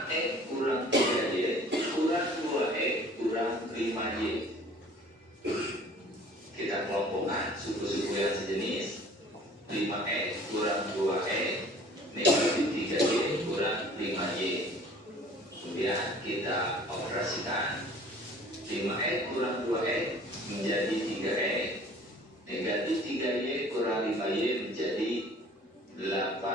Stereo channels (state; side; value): normal; both; correlation 0.50